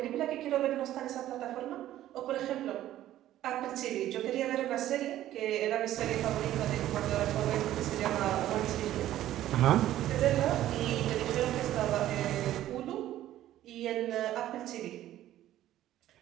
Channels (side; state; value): left; quieter; 13.3 dB